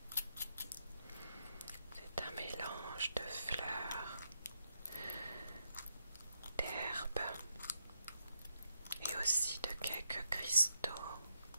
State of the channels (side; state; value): both; inverted; correlation -0.80